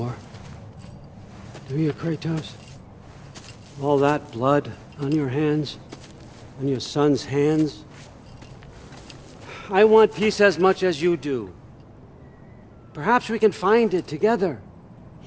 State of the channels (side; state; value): both; identical; correlation 1.00